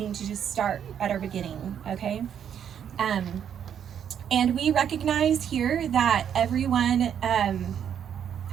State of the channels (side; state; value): left; quieter; 8.8 dB